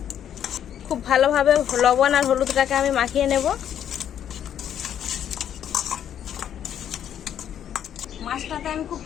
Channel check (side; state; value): right; quieter; 9.8 dB